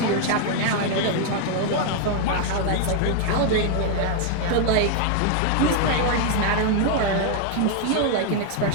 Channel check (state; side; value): different; both; correlation 0.00